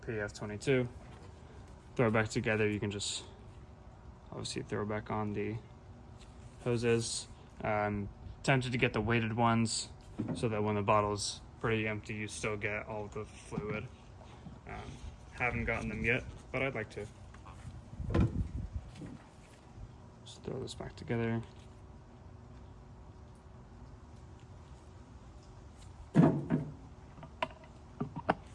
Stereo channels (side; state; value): both; identical; correlation 1.00